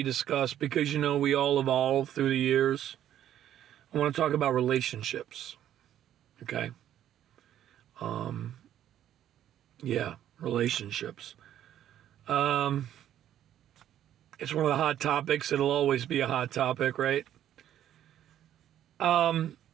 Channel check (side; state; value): left; quieter; 11.2 dB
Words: discussed because, we all evolve through the years. I want to talk about relationships, okay? Relationships. It's one of the hot topics. It'll always be a hot topic, right? The